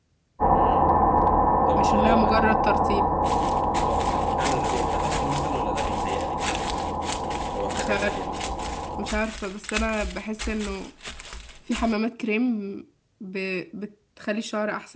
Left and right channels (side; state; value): both; identical; correlation 1.00